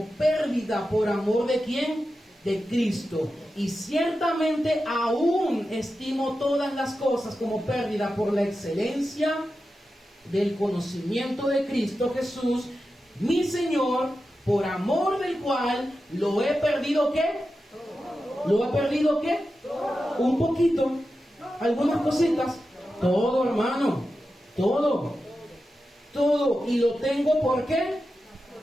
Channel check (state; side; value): normal; both; correlation 0.91